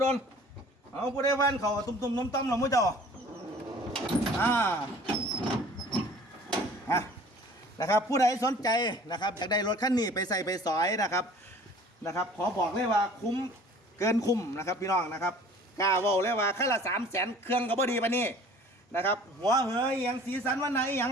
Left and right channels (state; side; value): normal; both; correlation 0.49